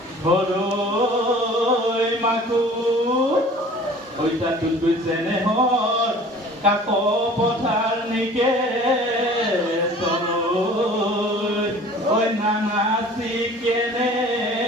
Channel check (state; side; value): normal; both; correlation 0.46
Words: হৰৈ মাকো ঐ চাতুত কৈছেনে হৰ কাক পথাৰ নিকে তলৈ ঐ নানাচি কেনে